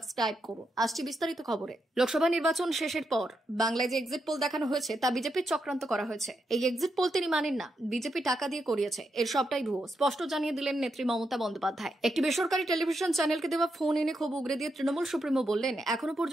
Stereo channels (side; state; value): both; normal; correlation 0.83